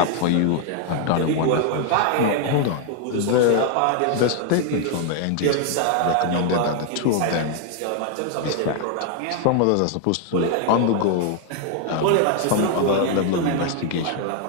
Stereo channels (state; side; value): different; both; correlation 0.00